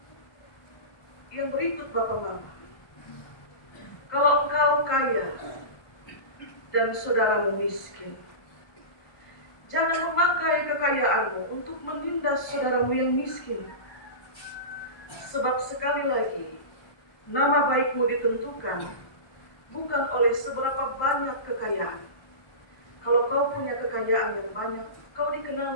Yang berikut Bapak Mama, kalau engkau kaya dan saudaramu miskin, jangan memakai kekayaanmu untuk menindas saudaramu yang miskin. Sebab sekali lagi, nama baikmu ditentukan bukan oleh seberapa banyak kekayaan. Kalau kau punya kekayaan yang banyak, kau dikenal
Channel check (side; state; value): right; late; 1.2 ms